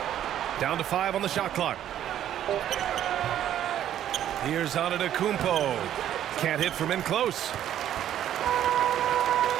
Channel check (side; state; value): left; quieter; 11.1 dB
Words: Down to 5 on the shot clock. Here's Antetokounmpo. Can't hit from in close.